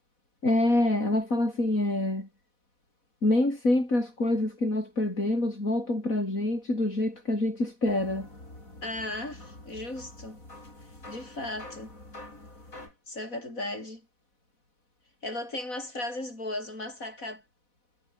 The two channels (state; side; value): late; right; 4.1 ms